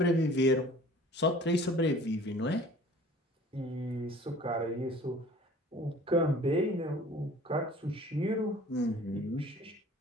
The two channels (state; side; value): normal; both; correlation 0.48